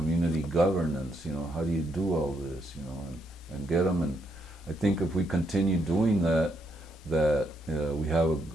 governance? How do you do all this? And get them. And I think if we continue doing that, we have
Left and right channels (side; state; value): both; normal; correlation 0.76